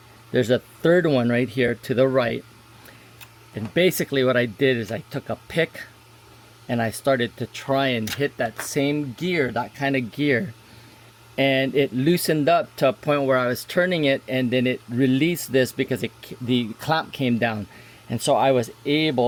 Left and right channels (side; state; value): both; identical; correlation 1.00